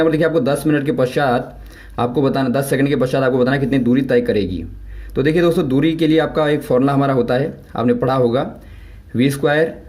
पर देखिए आपको 10 मिनट के पश्चात आपको बताना, 10 सेकंड के पश्चात आपको बताना कितनी दूरी तय करेगी। तो देखिए दोस्तों दूरी के लिए आपका एक फॉर्मूला हमारा होता है, आपने पढ़ा होगा, v²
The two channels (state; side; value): identical; both; correlation 1.00